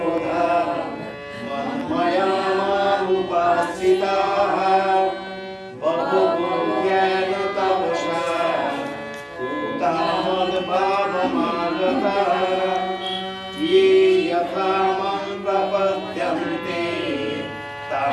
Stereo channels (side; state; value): both; identical; correlation 1.00